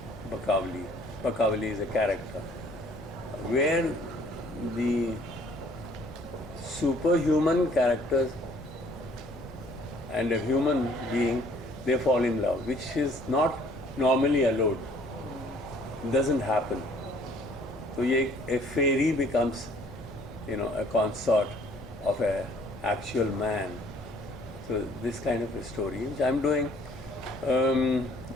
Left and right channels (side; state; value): both; normal; correlation 0.58